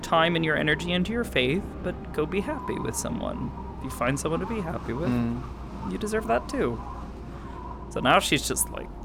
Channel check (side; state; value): both; identical; correlation 1.00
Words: time and your energy into your faith, but go be happy with someone. If you find someone to be happy with, you deserve that too. So now she's just like,